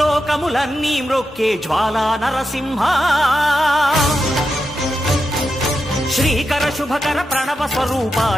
మ్రొక్కే జ్వాలా నరసింహ శ్రీకర శుభకర ప్రణవ స్వరూప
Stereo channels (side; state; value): both; normal; correlation 0.88